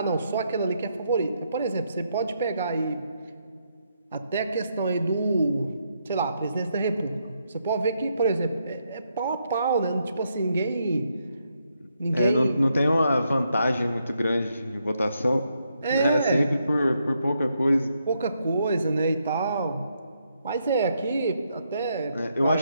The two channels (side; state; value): both; inverted; correlation -0.78